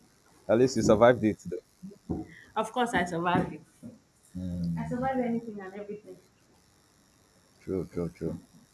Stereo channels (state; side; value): identical; both; correlation 1.00